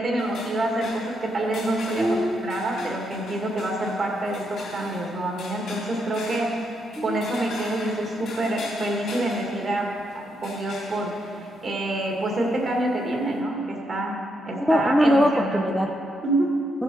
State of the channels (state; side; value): normal; both; correlation 0.79